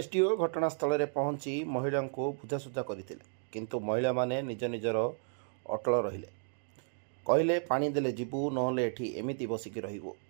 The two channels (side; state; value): left; silent; digital silence